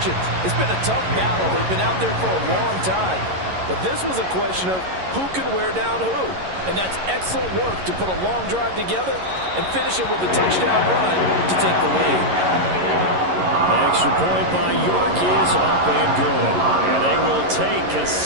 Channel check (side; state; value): left; late; 11 ms